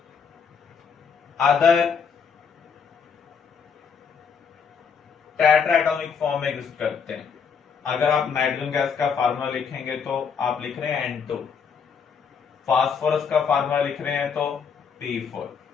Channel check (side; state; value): right; quieter; 6.4 dB